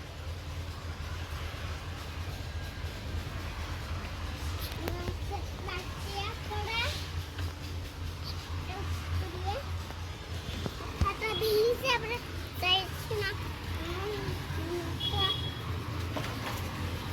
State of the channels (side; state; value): both; identical; correlation 1.00